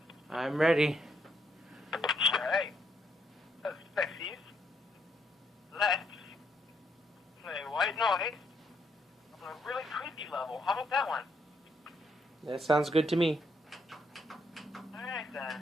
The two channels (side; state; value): both; normal; correlation 0.75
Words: I'm ready. Alright. So, sexies, let's play White Noise on a really creepy level. How about that one? That sounds good to me. Alright